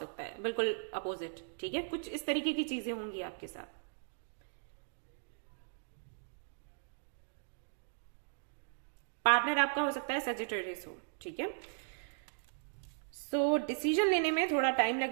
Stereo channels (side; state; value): left; silent; digital silence